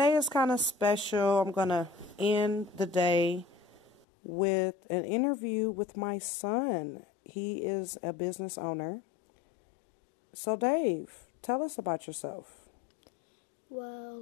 is kind of special. I'm going to end the day with an interview with my son. He is a business owner. So, Dave, tell us about yourself.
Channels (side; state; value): right; drops out; at 4.0 s